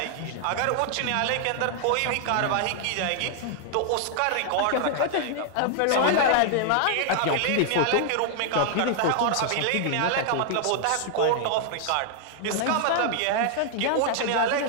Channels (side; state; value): both; different; correlation 0.00